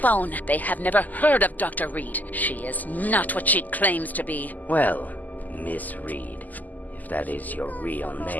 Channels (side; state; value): right; late; 0.082 ms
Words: They have never heard of Dr. Reed. She is not what she claims to be. Well, Miss Reed, if that is your real